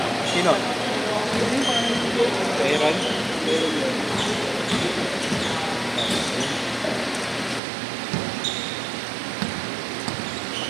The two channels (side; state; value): left; drops out; at 7.6 s